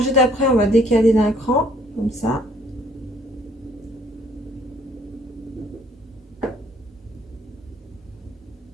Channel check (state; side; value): normal; both; correlation 0.62